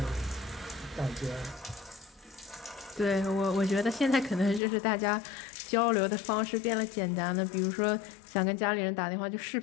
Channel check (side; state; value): right; drops out; at 4.6 s